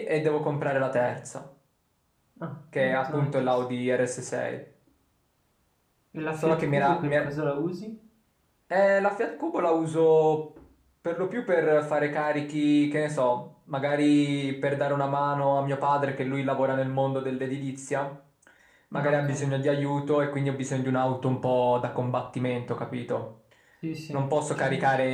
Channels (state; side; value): identical; both; correlation 1.00